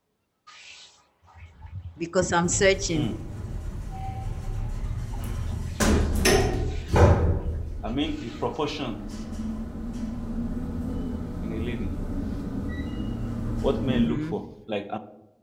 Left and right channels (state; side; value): identical; both; correlation 1.00